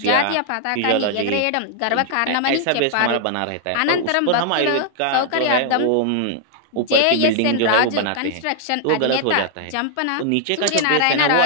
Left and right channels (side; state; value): both; different; correlation -0.01